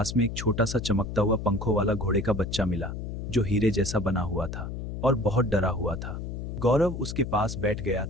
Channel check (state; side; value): noise; left; hum, 6 dB below the sound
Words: में एक छोटा सा चमकता हुआ पंखों वाला घोड़े का बच्चा मिला, जो हीरे जैसा बना हुआ था और बहुत डरा हुआ था। गौरव उसके पास बैठ गया।